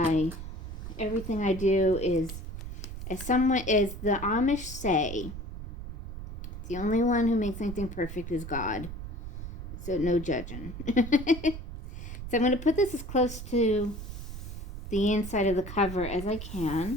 Everything I do is, as the Amish say, the only one who makes anything perfect is God. So no judging. So I'm going to put this as close to the inside of the cover as I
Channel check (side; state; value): right; noise; rumble, 9 dB below the sound